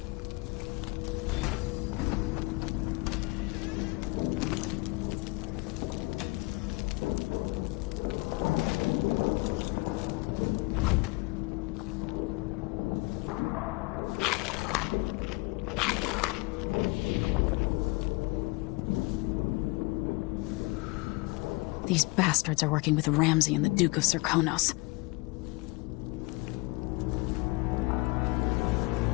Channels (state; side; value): quieter; right; 25.5 dB